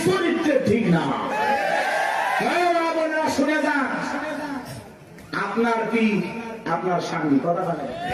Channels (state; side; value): identical; both; correlation 1.00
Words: চরিত্র ঠিক না। শুনে যান, আপনার কি আপনার স্বামী, কথা বলে